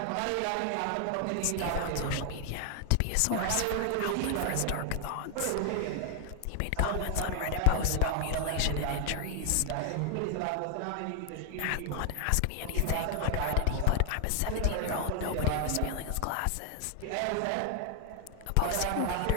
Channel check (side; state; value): both; different; correlation 0.00